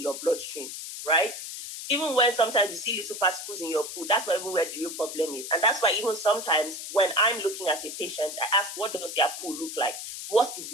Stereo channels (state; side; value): noise; left; hiss, 8 dB below the sound